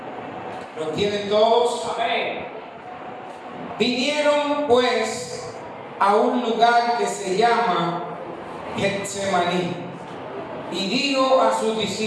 ¿Lo tienen todos? Amén. Vinieron pues a un lugar que se llama Getsemaní y dijo a sus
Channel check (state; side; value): identical; both; correlation 1.00